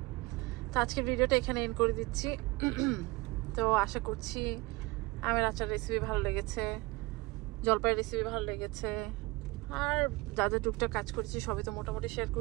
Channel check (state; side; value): quieter; left; 23.1 dB